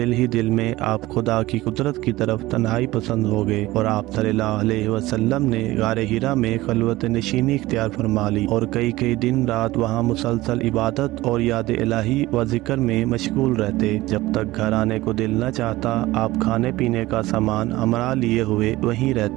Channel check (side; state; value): left; quieter; 18.3 dB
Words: ही दिल में आप खुदा की कुदरत की तरफ तन्हाई पसंद हो गए और आप सल्लल्लाहु अलैहि वसल्लम ने गारे हिरा में खलवत नशीनी इख्तियार फरमा ली और कई कई दिन रात वहाँ मुसलसल इबादत और याद इलाही व जिक्र में मशगूल रहते। जब तक घर आने को दिल न चाहता आप खाने पीने का सामान हमरा लिए हुए वहीं